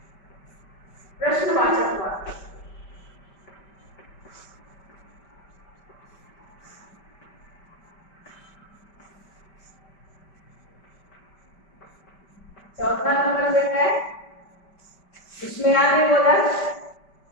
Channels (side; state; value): right; late; 5.1 ms